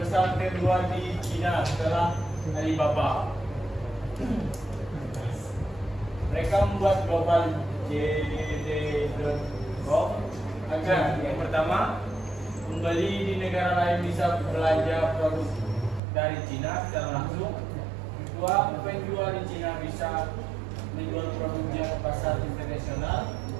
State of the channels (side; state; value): left; drops out; at 16.0 s